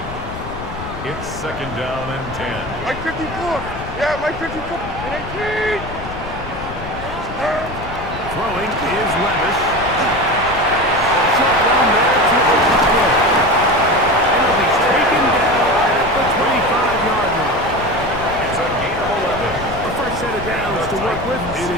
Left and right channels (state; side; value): noise; left; rumble, 11 dB below the sound